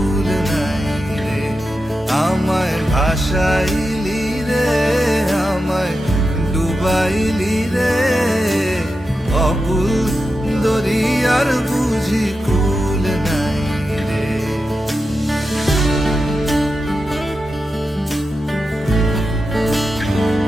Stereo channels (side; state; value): both; normal; correlation 0.90